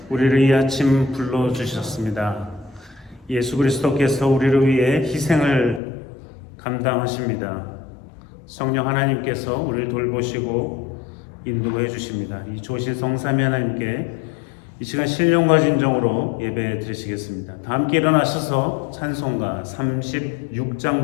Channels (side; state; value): right; drops out; at 5.8 s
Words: 우리를 이 아침 불러주셨습니다. 예수 그리스도께서 우리를 위해 희생을 감당하십니다. 성령 하나님께서 우리를 돌보시고 인도해 주십니다. 이 조실 성삼위 하나님께 이 시간 신령과 진정으로 예배 드리시겠습니다. 다 함께 일어나셔서 찬송가 36장